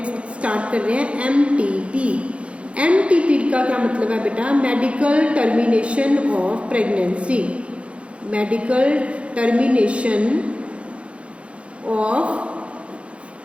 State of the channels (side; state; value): left; late; 0.061 ms